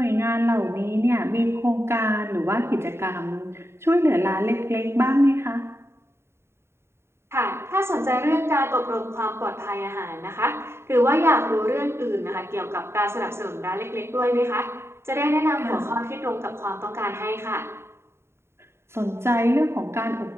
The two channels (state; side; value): late; left; 0.12 ms